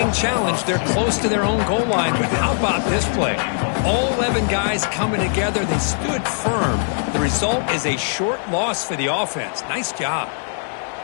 challenged. They're close to their own goal line, but how about this play? All 11 guys coming together. They stood firm. The result is a short loss for the offense. Nice job.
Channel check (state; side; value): silent; right; digital silence